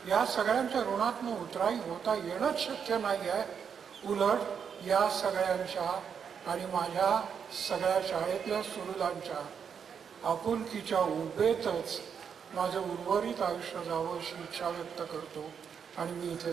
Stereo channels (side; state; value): left; quieter; 7.1 dB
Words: या सगळ्यांच्या ऋणातनं उतराई होता येणंच शक्य नाही आहे. उलट या सगळ्यांच्या आणि माझ्या सगळ्या शाळेतल्या सुहृदांच्या आपुलकीच्या उभेतच माझं उर्वरित आयुष्य जावं अशी इच्छा व्यक्त करतो आणि मी इथे